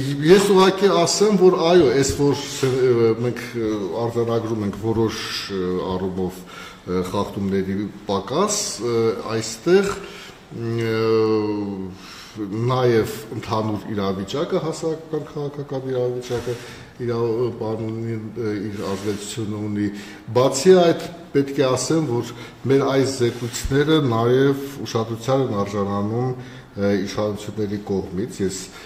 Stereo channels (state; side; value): identical; both; correlation 1.00